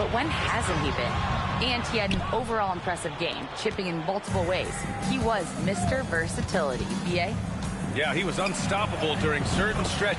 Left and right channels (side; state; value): both; identical; correlation 1.00